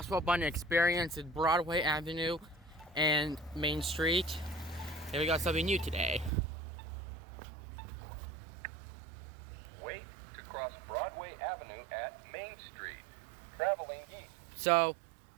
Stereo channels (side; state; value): left; drops out; at 6.3 s